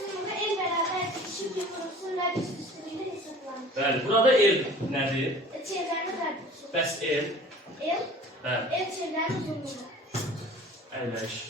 el bərabər bitişik bir kurusun radius üstünlüğüyle hesaplanır. Bəli, burada el nədir? Çevrenin radiusu. Bəs el? El, Bəli, el çevrenin uzunluğu. əyləş.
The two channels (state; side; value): normal; both; correlation 0.46